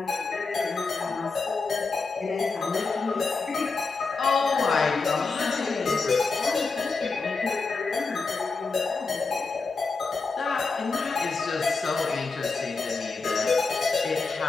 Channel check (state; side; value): quieter; right; 4.3 dB